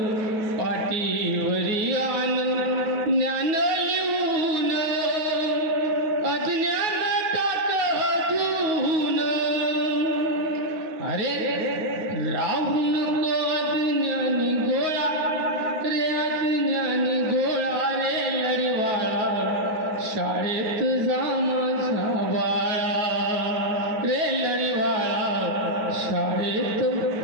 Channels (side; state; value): left; late; 9.3 ms